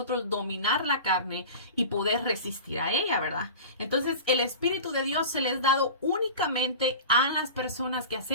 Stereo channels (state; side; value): inverted; both; correlation -0.33